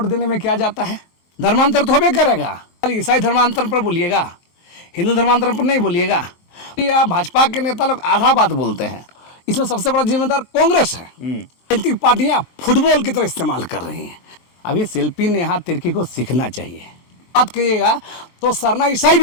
देने में क्या जाता है? धर्मांतर तो होबे करेगा। ईसाई धर्मांतर पर बोलिएगा, हिंदू धर्मांतर पर नहीं बोलिएगा। या भाजपा के नेता लोग आधा बात बोलते हैं। इसमें सबसे बड़ा जिम्मेदार कांग्रेस है। राजनीतिक पार्टियां फुटबॉल की तरह इस्तेमाल कर रही हैं। अभी शिल्पी नेहा तिर्की को सीखना चाहिए। बात करिएगा तो सरना ईसाई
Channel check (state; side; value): late; right; 24 ms